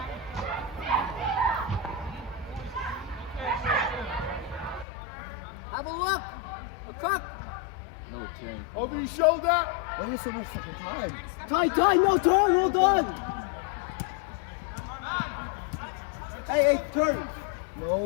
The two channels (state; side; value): drops out; right; at 4.9 s